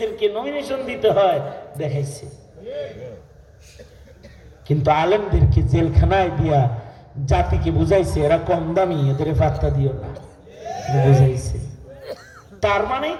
নমিনেশন দিতে হয়, দেখাইছে। কিন্তু আলেমদেরকে জেলখানায় দিয়া জাতিকে বুঝাইছে এরা কম দামি, এদের পাত্তা দিও না, বুঝাইছে। তার মানে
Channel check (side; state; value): both; identical; correlation 1.00